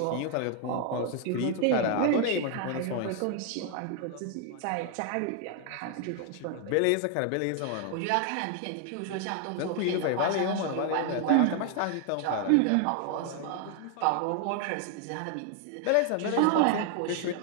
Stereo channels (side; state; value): both; different; correlation 0.00